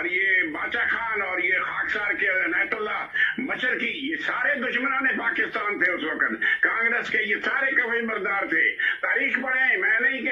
ये बाचा खान और ये खाकसार के अनायतुल्लाह मशरकी, ये सारे दुश्मनान पाकिस्तान थे उस वक्त। कांग्रेस के ये सारे कवि बरदार थे। तारीख पढ़े, मैं नहीं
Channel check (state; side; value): identical; both; correlation 1.00